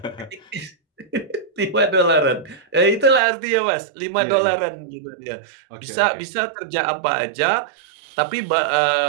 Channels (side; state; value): left; drops out; at 3.2 s